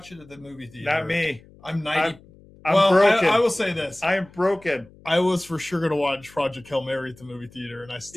it at the movie theater. Not me. I'm 90. I'm broken. I will say this. I am broken. I was for sure gonna watch Project Hail Mary at the movie theater, and I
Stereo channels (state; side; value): noise; left; hum, 25 dB below the sound